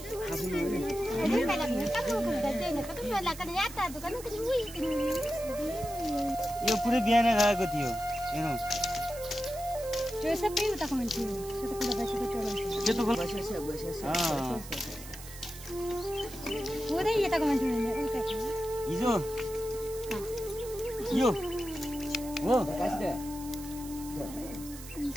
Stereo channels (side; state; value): right; noise; hiss, 14 dB below the sound